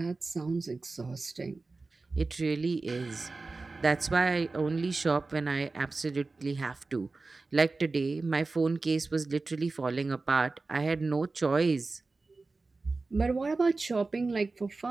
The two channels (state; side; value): quieter; left; 3.7 dB